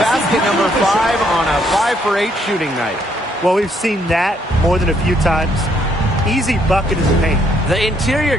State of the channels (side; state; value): both; normal; correlation 0.70